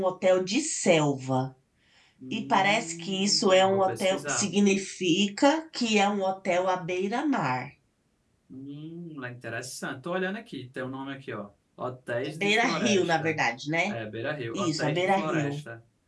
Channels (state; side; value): identical; both; correlation 1.00